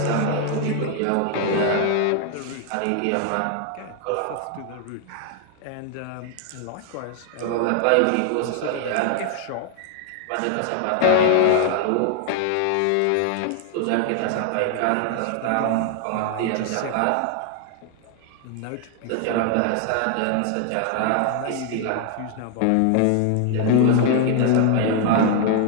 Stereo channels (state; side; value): different; both; correlation 0.00